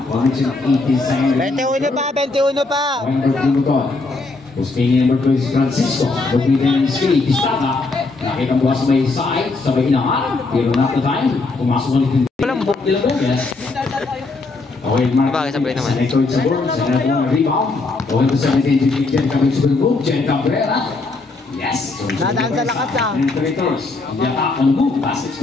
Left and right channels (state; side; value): quieter; right; 3.6 dB